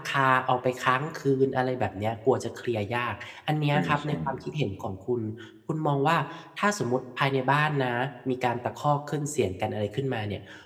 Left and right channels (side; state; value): both; identical; correlation 1.00